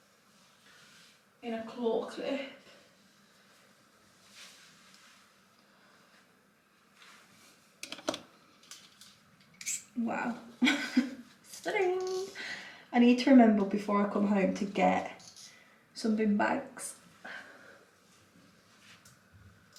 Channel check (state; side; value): identical; both; correlation 1.00